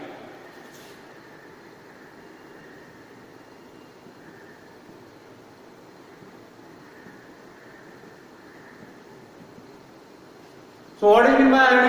So what do you mean by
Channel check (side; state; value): both; identical; correlation 1.00